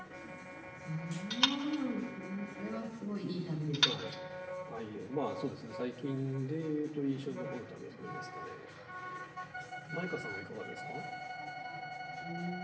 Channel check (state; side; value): identical; both; correlation 1.00